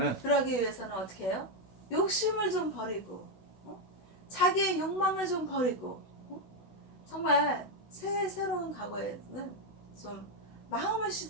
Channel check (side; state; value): right; late; 16 ms